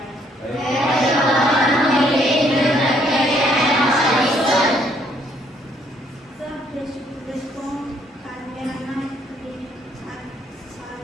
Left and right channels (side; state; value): both; normal; correlation 0.67